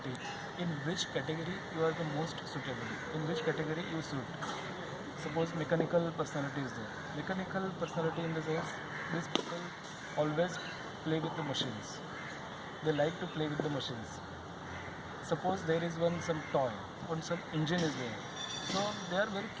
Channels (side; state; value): both; identical; correlation 1.00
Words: in which category you are the most suitable, in which category you suit. Suppose mechanical personality is there. Mechanical personality in the sense, these people always play with the machines. They like to play with the machines. Suppose there is some toy, some engine is there. So they are very